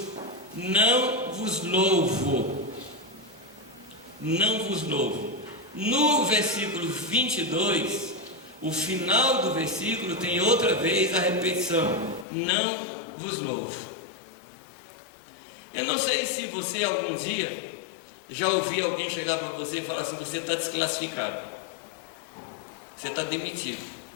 não vos louvo. Não vos louvo. No versículo 22, o final do versículo tem outra vez a repetição: não vos louvo. Eu não sei se você algum dia já ouviu alguém chegar para você e falar assim: você está desclassificado, você está demitido,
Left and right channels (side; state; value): right; drops out; at 12.2 s